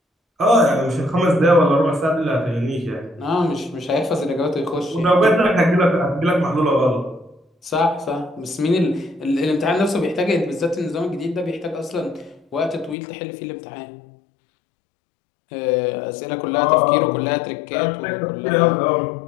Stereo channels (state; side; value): drops out; right; at 13.0 s